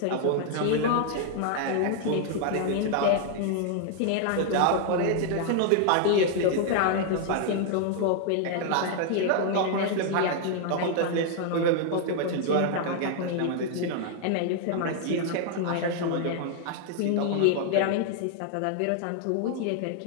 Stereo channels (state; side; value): different; both; correlation 0.00